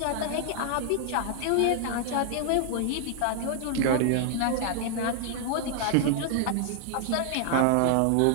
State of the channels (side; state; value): both; different; correlation -0.01